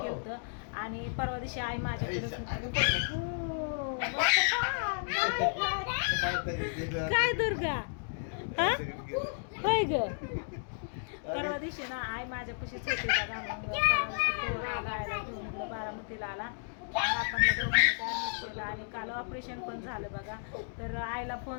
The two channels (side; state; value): right; silent; digital silence